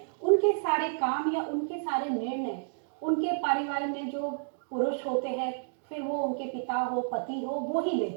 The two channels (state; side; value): silent; left; digital silence